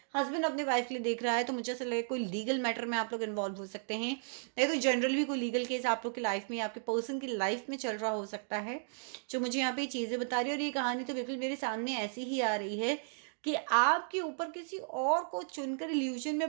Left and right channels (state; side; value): silent; left; digital silence